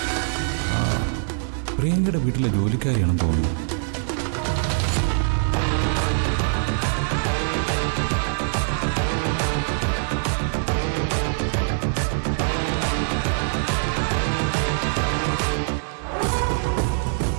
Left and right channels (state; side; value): silent; left; 56 dB below the other